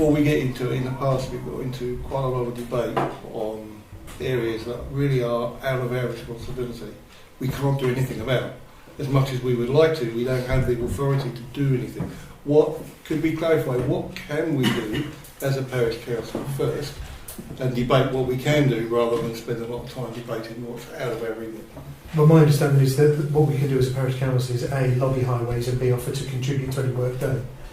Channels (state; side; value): identical; both; correlation 1.00